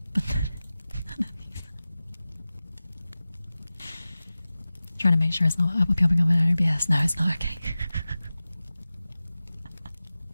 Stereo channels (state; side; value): inverted; both; correlation -0.96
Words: but none of these. Trying to make sure it's not popping up in OBS. No, it's not okay.